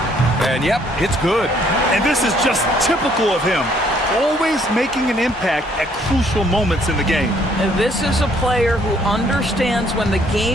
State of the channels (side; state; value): both; normal; correlation 0.65